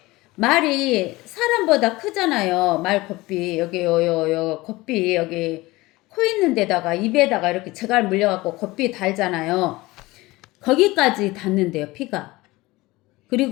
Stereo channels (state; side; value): quieter; right; 20.5 dB